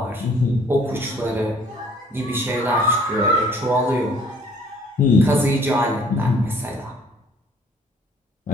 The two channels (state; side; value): normal; both; correlation 0.58